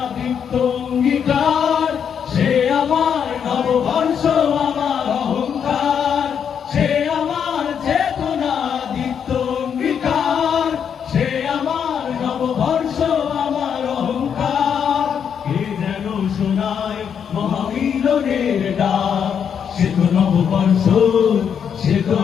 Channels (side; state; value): right; quieter; 7.7 dB